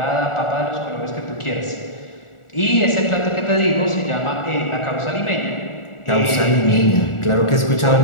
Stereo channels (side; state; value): right; late; 1.4 ms